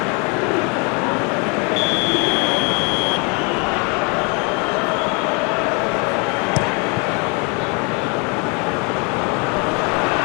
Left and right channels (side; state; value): right; quieter; 32.9 dB